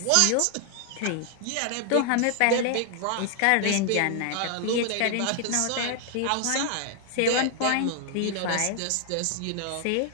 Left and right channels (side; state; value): both; different; correlation 0.00